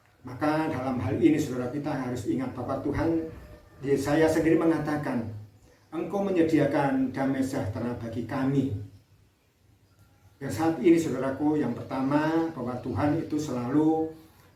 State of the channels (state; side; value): identical; both; correlation 1.00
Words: Maka dalam hal ini saudara, kita harus ingat bahwa Tuhan, Yesaya sendiri mengatakan, Engkau menyediakan damai sejahtera bagi kami. Dan saat ini saudaraku, yang pertama bahwa Tuhan itu selalu